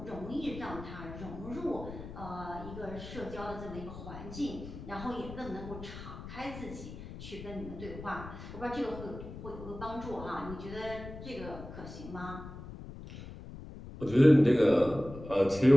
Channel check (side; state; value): left; noise; rumble, 12 dB below the sound